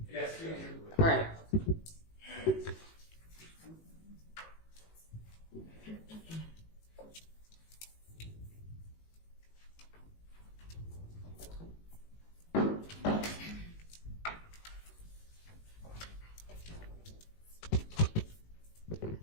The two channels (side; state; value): right; late; 18 ms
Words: Yes, All right.